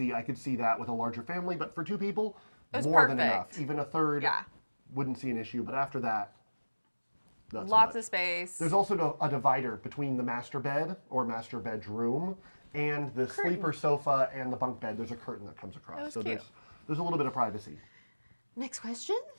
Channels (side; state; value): both; inverted; correlation -1.00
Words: I could see that with a larger family, but for 2 people, It was more than perfect. enough. Even a third, Yeah. wouldn't see an issue. But after that, not so Lots much. of space. There's also a divider between the master bed or master bedroom and the sleeper sofa and the bunk bed. There's a curtain that comes across. That was so cute. there's a little bit of privacy. Next question.